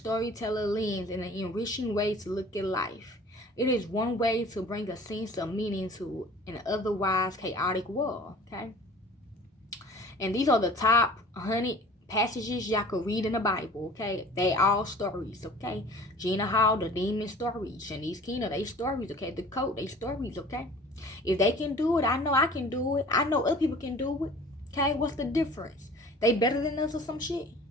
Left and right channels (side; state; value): both; normal; correlation 0.46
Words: lens in an enriching way to look at life. It is one way to bring a sense of meaning to an otherwise chaotic world, okay? And these are the top 100 passages y'all could read in the Bible, okay? They all stories, okay? Gina Hall, the demon stories. Shanice Keena, they stories, okay? The Coat, they stories, okay? If they can do it, I know I can do it. I know other people can do it, okay? What's the difference? They better than us or some shit?